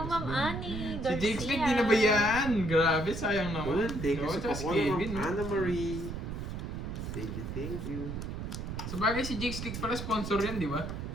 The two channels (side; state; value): right; noise; rumble, 6 dB below the sound